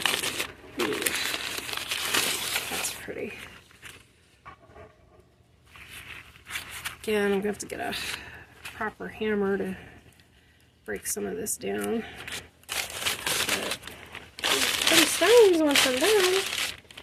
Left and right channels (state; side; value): identical; both; correlation 1.00